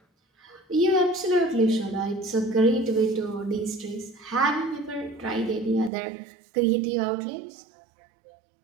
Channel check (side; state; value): left; drops out; at 5.9 s